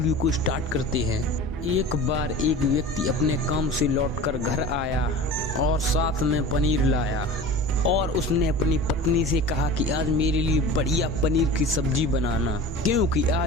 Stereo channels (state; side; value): normal; both; correlation 0.36